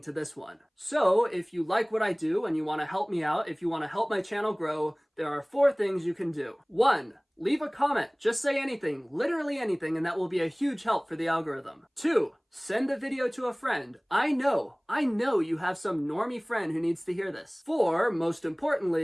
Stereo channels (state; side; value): identical; both; correlation 1.00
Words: to this one. So if you like what I do and you want to help me out, if you want to help my channel grow, there are 4 things you can do. 1. Leave a comment. Just say anything, literally anything, and that will be a huge help for the algorithm. 2. Send the video to a friend. I know you have some normie friend who needs to hear this. 4, most